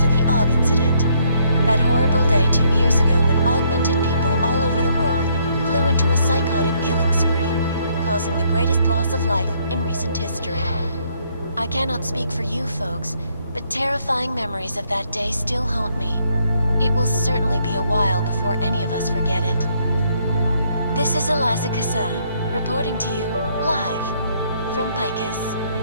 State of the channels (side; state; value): both; inverted; correlation -0.69